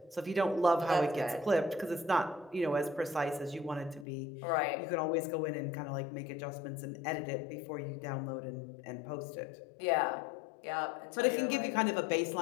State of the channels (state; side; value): drops out; right; at 4.0 s